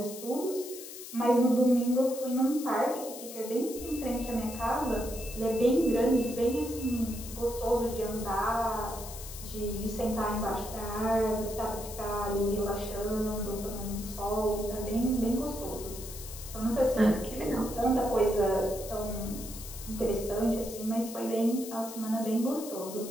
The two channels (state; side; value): noise; left; hiss, 12 dB below the sound